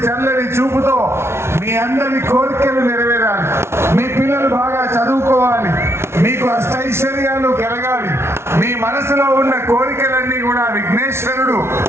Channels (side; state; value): left; late; 0.12 ms